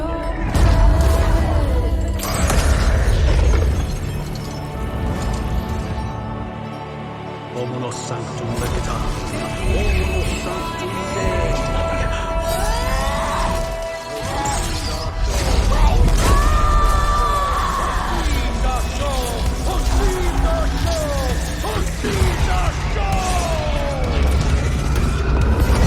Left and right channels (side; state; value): both; identical; correlation 1.00